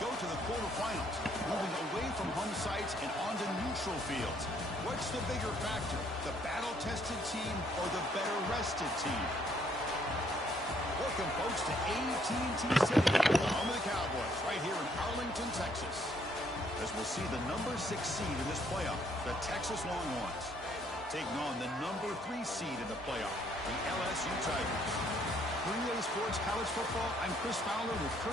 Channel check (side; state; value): both; normal; correlation 0.67